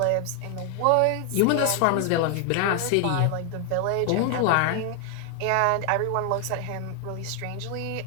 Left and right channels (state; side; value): different; both; correlation 0.00